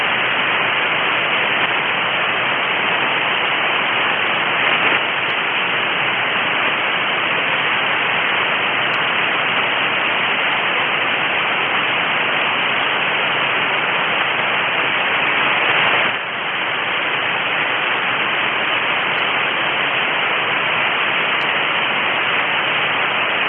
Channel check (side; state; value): both; identical; correlation 1.00